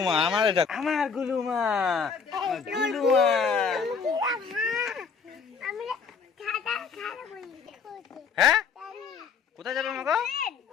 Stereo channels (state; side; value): quieter; right; 5.7 dB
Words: আমার, এটা আমার গুলুমা, গুলুমা। হ্যাঁ কোথায় যাবে মাগো?